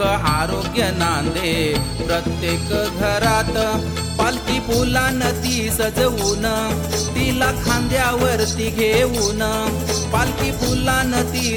आरोग्य नांदे प्रत्येक घरात पालखी फुलानं ती सजवून तिला खांद्यावरती घेऊन पालखी फुलानं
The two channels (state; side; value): identical; both; correlation 1.00